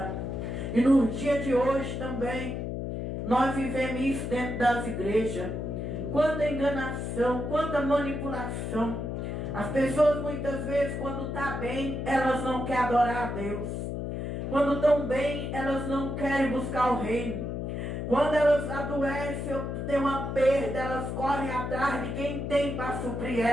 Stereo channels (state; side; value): noise; left; hum, 4 dB below the sound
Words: E no dia de hoje também, nós vivemos isso dentro das igrejas. Quanta enganação, quanta manipulação. As pessoas muitas vezes, quando estão bem, elas não querem adorar a Deus. Quando estão bem, elas não querem buscar o reino. Quando elas adoecem ou tem uma perda, elas correm atrás de quem tem para suprir